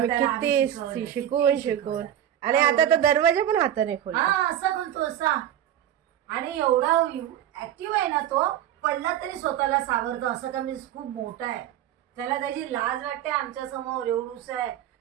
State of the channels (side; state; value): left; quieter; 11.2 dB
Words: त्याला किती शिकवलं, शिकवून किती शिकवून. आणि आता तर दरवाजा पण हाताने खोल. हा असा बोलतो असा. आणि एवढा ऍक्टिव्ह आहे ना तो. पडला तरी स्वतःला सावरतो. असं का मी खूप मोठा आहे. त्याला त्याची लाज वाटते आमच्या समोर. एवढूस आहे